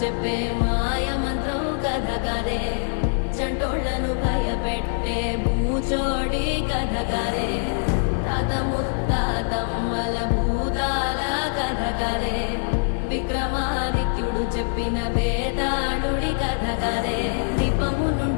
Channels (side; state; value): right; silent; 63 dB below the other